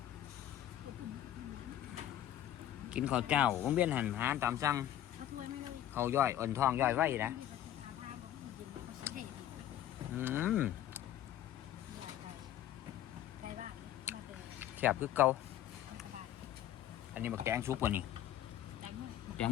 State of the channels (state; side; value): quieter; right; 12.1 dB